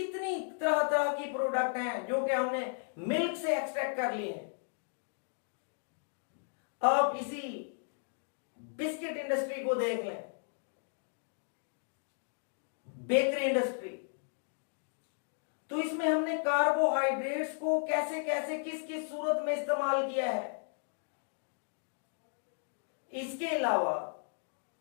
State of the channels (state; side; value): silent; right; digital silence